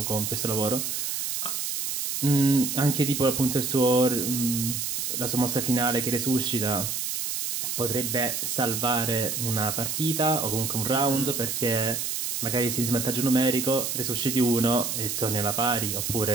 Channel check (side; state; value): right; noise; hiss, 2 dB below the sound